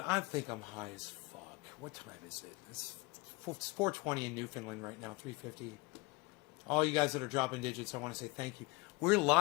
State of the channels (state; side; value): quieter; right; 25.1 dB